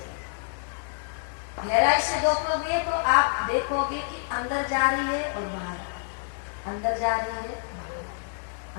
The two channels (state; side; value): silent; right; digital silence